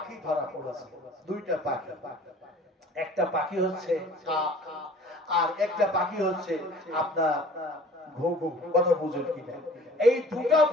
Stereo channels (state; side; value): normal; both; correlation 0.48